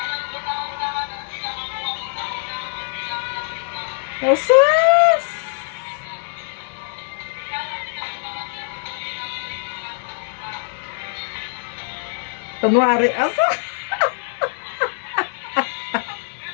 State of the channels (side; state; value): right; silent; digital silence